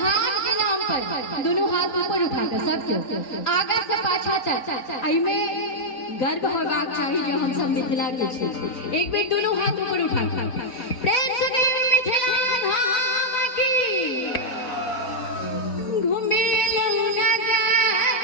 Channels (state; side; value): late; right; 4.0 ms